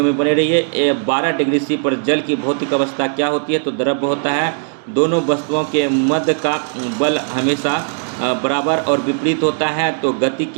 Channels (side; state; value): left; silent; digital silence